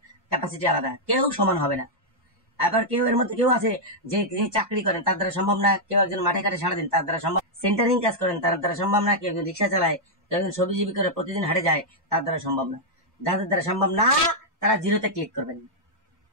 ক্যাপাসিটি আলাদা, কেউ সমান হবে না। আবার কেউ এর মধ্যে কেউ আছে যে চাকরি করেন, তার দ্বারা সম্ভব না। কেউ একজন মাঠে ঘাটে সারাদিন, তার দ্বারা সম্ভব। সেন্টারিং কাজ করেন, তার দ্বারা সম্ভব না। কেউ একজন রিক্সা চালায়, কেউ একজন সবজিজীবী করে প্রতিদিন হাটে যায়, তার দ্বারা সম্ভব না। যাদের দ্বারা সম্ভব না তারা 0তে ক্লিক করবেন।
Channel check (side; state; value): both; normal; correlation -0.05